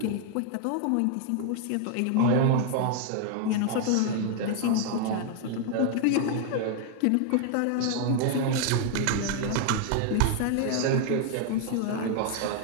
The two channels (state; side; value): different; both; correlation 0.00